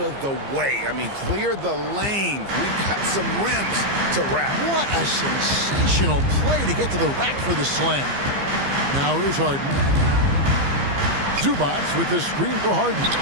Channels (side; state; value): left; late; 15 ms